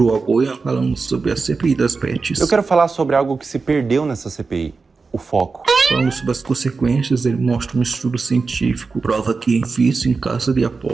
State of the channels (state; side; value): quieter; left; 4.4 dB